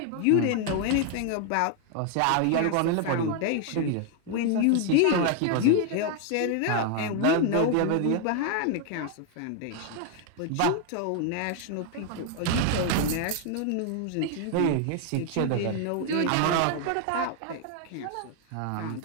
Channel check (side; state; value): both; different; correlation 0.00